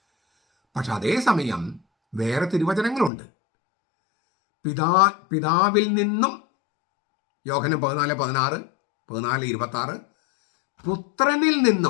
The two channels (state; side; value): drops out; right; at 3.1 s